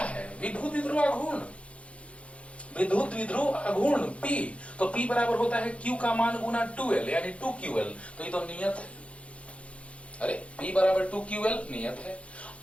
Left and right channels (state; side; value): late; right; 0.062 ms